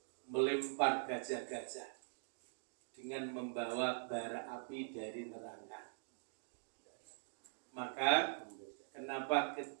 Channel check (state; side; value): silent; left; digital silence